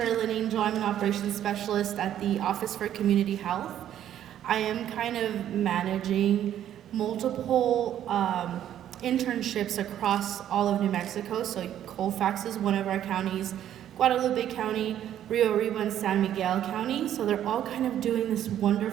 Angel. I'm an operations specialist at the Office for Community Health. I am kind of managing multiple internships across all of New Mexico. So Colfax is one of our counties, Guadalupe County, Rio Arriba, and San Miguel County. So they're all kind of doing this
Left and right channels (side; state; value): left; quieter; 11.0 dB